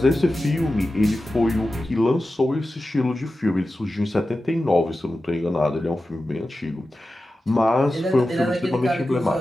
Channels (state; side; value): normal; both; correlation 0.93